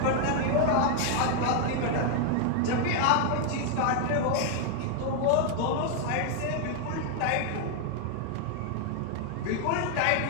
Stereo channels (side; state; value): both; different; correlation 0.00